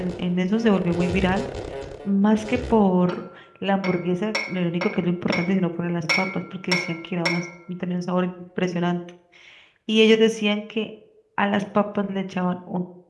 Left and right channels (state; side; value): identical; both; correlation 1.00